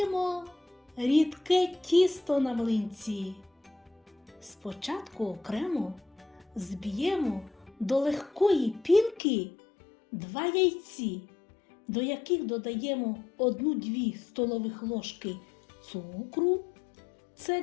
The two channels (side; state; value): right; drops out; at 9.2 s